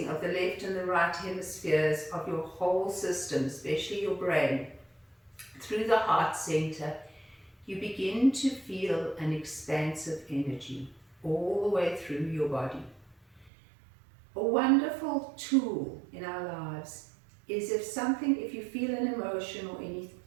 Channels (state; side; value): drops out; left; at 13.5 s